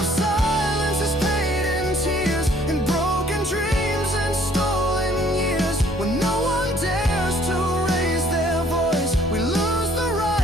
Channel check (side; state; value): both; normal; correlation 0.59